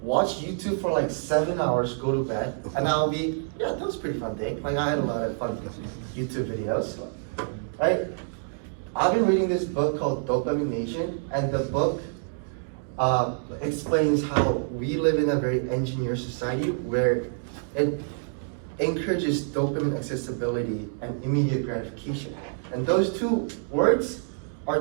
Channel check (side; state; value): left; silent; digital silence